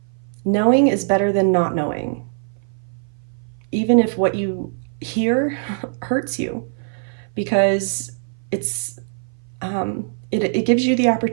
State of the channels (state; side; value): silent; left; 59 dB below the other